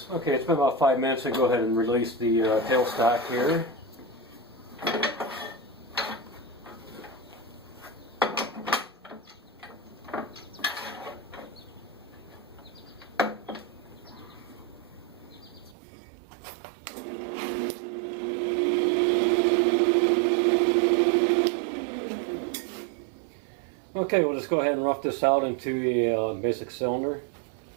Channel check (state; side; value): drops out; left; at 15.8 s